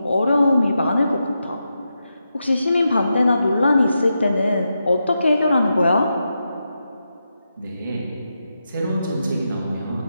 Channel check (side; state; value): both; inverted; correlation -0.87